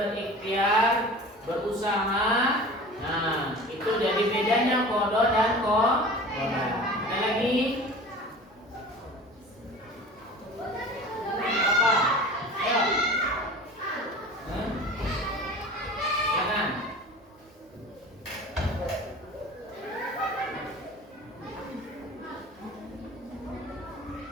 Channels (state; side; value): normal; both; correlation 0.39